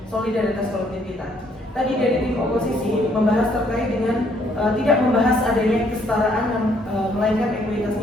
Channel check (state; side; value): normal; both; correlation 0.67